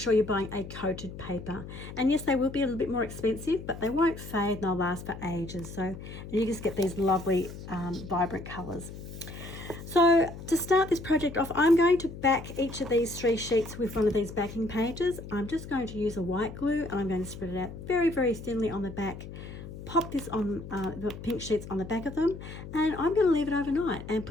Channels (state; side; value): noise; left; hum, 12 dB below the sound